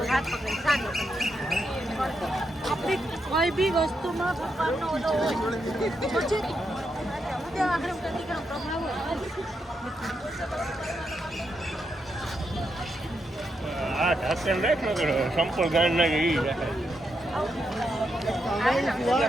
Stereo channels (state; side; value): normal; both; correlation 0.83